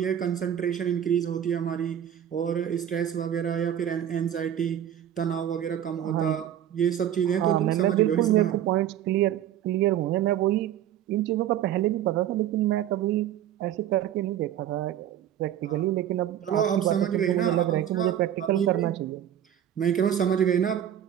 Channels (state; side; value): quieter; left; 10.7 dB